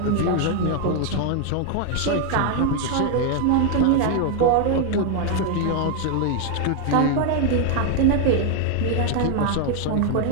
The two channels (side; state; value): both; different; correlation 0.00